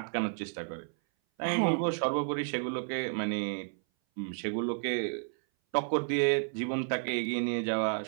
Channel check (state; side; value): silent; left; 57 dB below the other